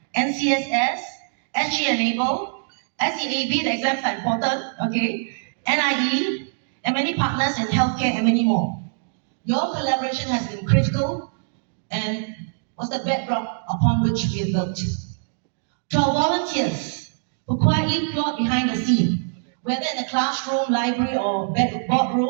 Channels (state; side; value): silent; left; digital silence